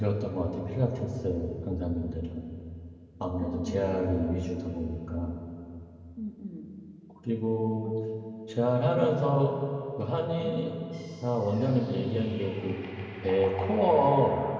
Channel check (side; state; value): both; identical; correlation 1.00